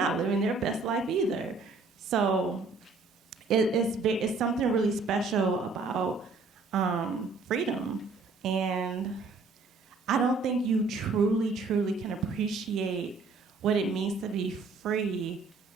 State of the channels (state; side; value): quieter; left; 4.0 dB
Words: living their best life either. So it's something really special about freedom. And I don't think you truly, truly can appreciate what it means to be free.